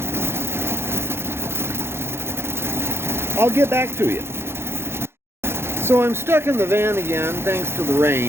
I'll get back to you. So I'm stuck in the van again thanks to the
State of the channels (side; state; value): left; late; 0.12 ms